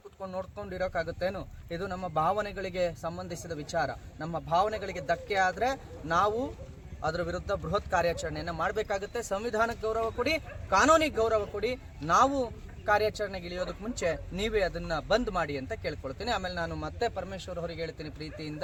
ಕುತ್ಕೊಂಡು ನೋಡ್ಕೊಂಡು ಇರೋಕ್ಕಾಗುತ್ತೇನು? ಇದು ನಮ್ಮ ಭಾವನೆಗಳಿಗೆ ಸಂಬಂಧಿಸಿದ ವಿಚಾರ. ನಮ್ಮ ಭಾವನೆಗಳಿಗೆ ಧಕ್ಕೆ ಆದ್ರೆ ನಾವು ಅದರ ವಿರುದ್ಧ ಬೃಹತ್ ಕಾರ್ಯಾಚರಣೆಯನ್ನು ಮಾಡಬೇಕಾಗುತ್ತೆ. ಸಂವಿಧಾನಕ್ಕೆ ಗೌರವ ಕೊಡಿ, ಕಾನೂನಿಗೆ ಗೌರವ ಕೊಡಿ. ನಾವು ಕಾರ್ಯಾಚರಣೆಗೆ ಇಳಿಯೋದಕ್ಕೆ ಮುಂಚೆ ನೀವೇ ಅದನ್ನ ಬಂದ್ ಮಾಡಿ ಅಂತ ಕೇಳ್ಕೊಳ್ತೀನಿ. ಆಮೇಲೆ ನಾನು ಮತ್ತೆ ಪರಮೇಶ್ವರ್ ಅವರಿಗೆ ಹೇಳ್ತೀನಿ ಪ್ರೀತಿಯಿಂದ,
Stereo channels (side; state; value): both; identical; correlation 1.00